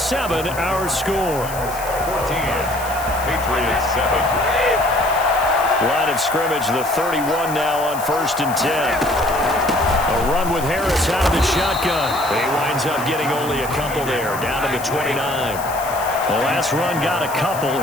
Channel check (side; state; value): left; noise; hiss, 13 dB below the sound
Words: our score. 14, Patriots 7. Line of scrimmage, the 31 now on 1st and 10. A run with Harris out of the shotgun. He winds up getting only a couple there, down to the 29. The last run got a couple.